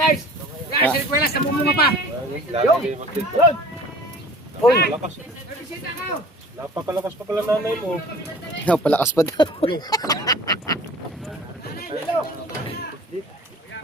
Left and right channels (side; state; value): both; normal; correlation 0.45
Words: Guys, request na mumunga pa! Uy! Napakalakas pa pala nanay mo. Palakas pa daw.